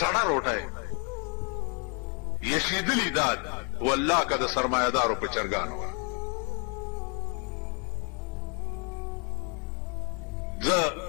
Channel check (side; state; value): right; quieter; 34.9 dB